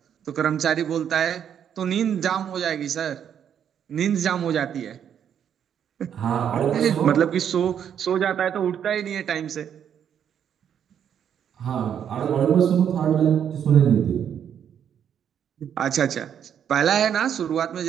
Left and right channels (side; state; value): left; quieter; 8.8 dB